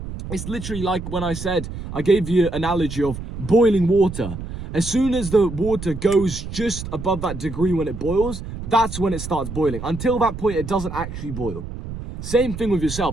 it's literally like when I said, I gave you an analogy of boiling water. As soon as the water goes just above that degree when it boils, that's when it starts boiling. Until that point, it doesn't actually boil. Same thing with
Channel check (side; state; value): right; noise; rumble, 9 dB below the sound